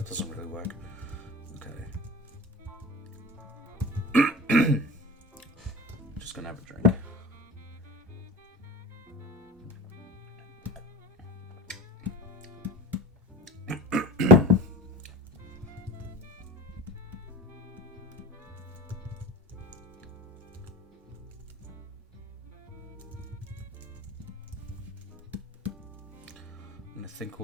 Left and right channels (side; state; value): both; normal; correlation 0.33